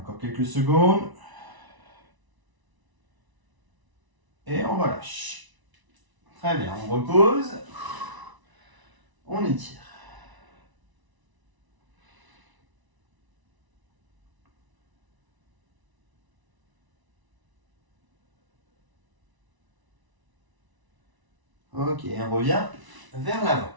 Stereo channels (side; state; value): left; late; 1.0 ms